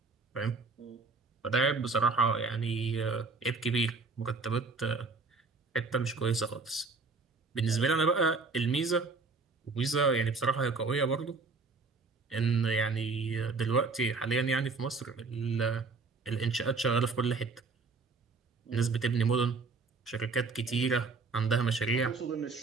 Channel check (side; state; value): left; quieter; 4.1 dB